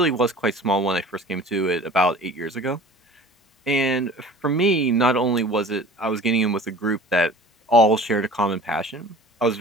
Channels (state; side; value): normal; both; correlation 0.43